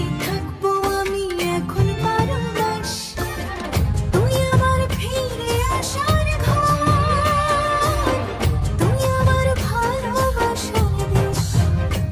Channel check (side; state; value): both; identical; correlation 1.00